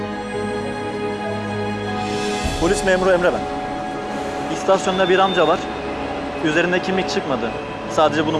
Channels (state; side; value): identical; both; correlation 1.00